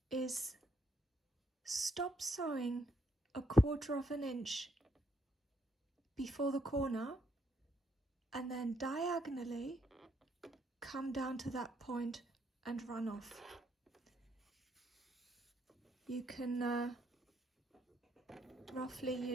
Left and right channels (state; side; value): normal; both; correlation 0.74